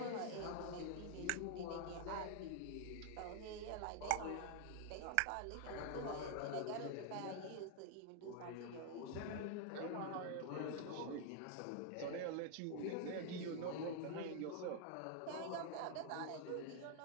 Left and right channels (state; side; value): different; both; correlation 0.00